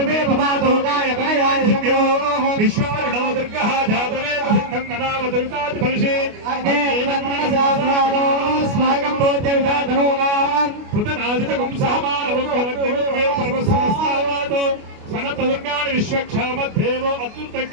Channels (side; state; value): left; late; 29 ms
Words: భవాదోగాయ గణయాయ శివ్యో విశ్వారిణో దుర్గః జాతవేద సిద్ధం ననామ దుర్గాది ఫలిషే అగ్నే వన్మనసాస్మానో స్వాగం భోజ్యవిదాధనోనాం పృతనాజితకం సహమానవం వరగ్నిమే పరమసమస్తావాదో సనత దుర్గాని విశ్వక్షామద్దేవో